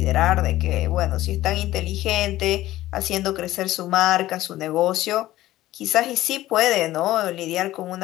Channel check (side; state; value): right; quieter; 15.5 dB